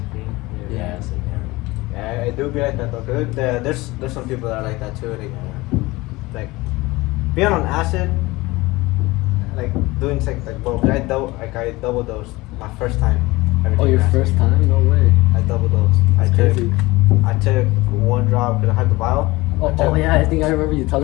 Yeah, it's like, Yeah, it do be like that though. Cause there's some people that are like that too. Like being on acid, like doing sex, like bro. I double dosed my first time. Oh, your first time? No way. I double dosed. I took one drop because I had the vial. Oh yeah, I think I remember you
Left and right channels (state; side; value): quieter; right; 21.1 dB